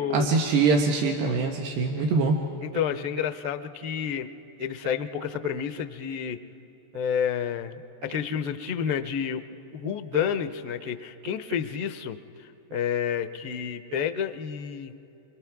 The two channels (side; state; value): left; late; 14 ms